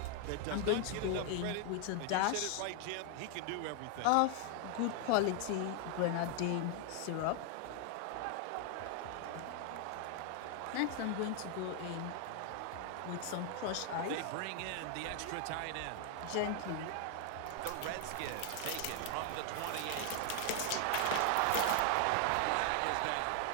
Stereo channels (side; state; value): both; different; correlation 0.00